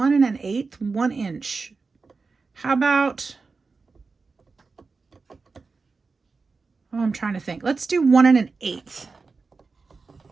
1/8, 1 inch. How about, I'm trying to think. Let's do 1 1/8.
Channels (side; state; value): left; quieter; 4.3 dB